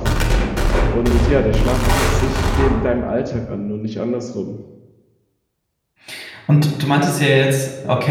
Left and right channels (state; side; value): identical; both; correlation 1.00